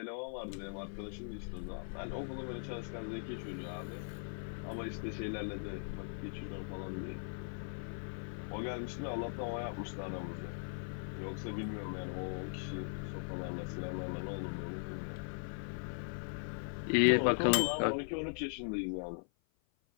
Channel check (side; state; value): right; silent; 51 dB below the other